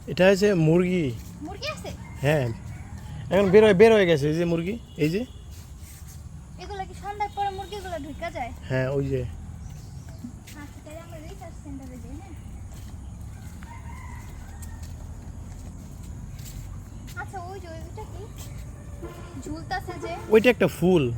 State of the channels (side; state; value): both; identical; correlation 1.00